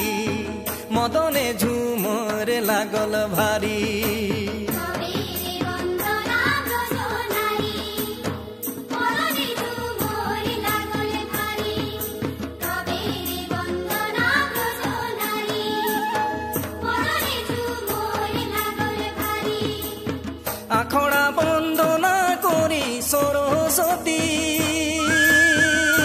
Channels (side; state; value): both; identical; correlation 1.00